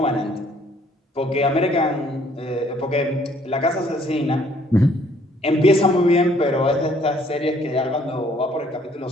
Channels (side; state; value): both; normal; correlation 0.62